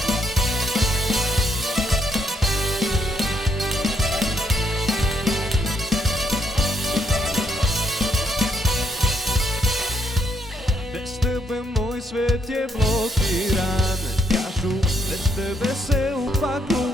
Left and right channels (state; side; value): normal; both; correlation 0.73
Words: Bez tebe moj svet je blokiran. Kažu, bez tebe se u paklu